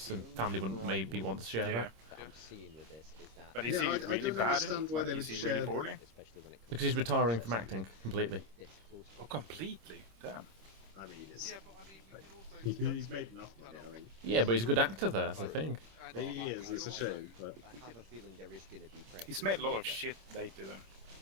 and family wouldn't maybe want to share that. But is he really bad? Like, is he really poorly? Because he's retiring from acting completely. Oh, completely? Damn. I mean, he's made enough money, I think. Yeah, but he's a good actor there, that's the thing. He is, it's a shame, but... I have a feeling there is going to be pressure. He's made a lot of shit lately,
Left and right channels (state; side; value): late; left; 26 ms